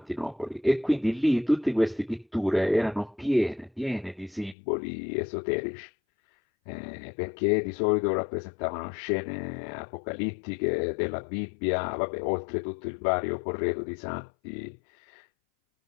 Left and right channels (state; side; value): drops out; right; at 4.5 s